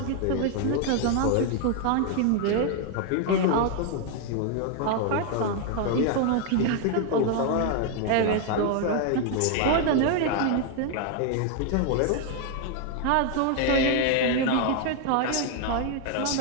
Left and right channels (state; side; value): different; both; correlation 0.00